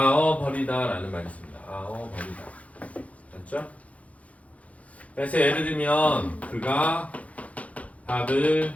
라는 말이 있습니다. 버리다. 맞죠? 그래서 예를 들면 그가 밥을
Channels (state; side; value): late; right; 0.066 ms